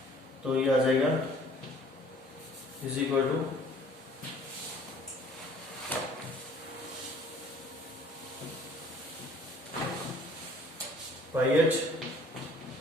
तो ये आ जाएगा is equal to pi H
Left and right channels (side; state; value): both; normal; correlation 0.55